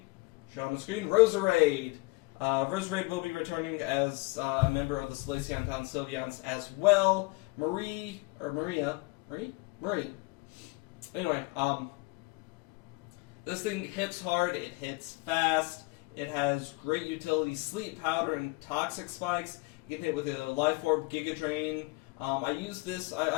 show on the screen, Roserade. Roserade will be returning as a member of the Solaceon Town Sylveons as well. Marie. Anyway, this thing hits hard, it hits fast, it has great utility, Sleep Powder and Toxic Spikes. You can hit with a Life Orb, Giga Drain. I use this,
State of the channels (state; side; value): quieter; right; 25.4 dB